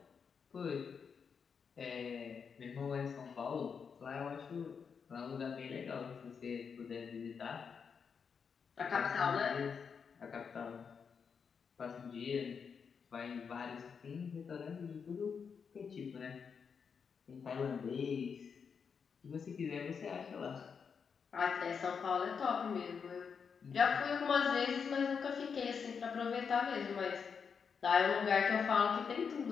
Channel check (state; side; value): quieter; right; 6.3 dB